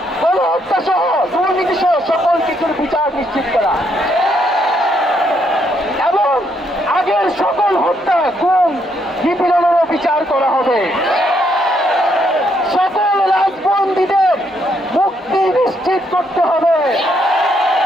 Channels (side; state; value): both; normal; correlation 0.74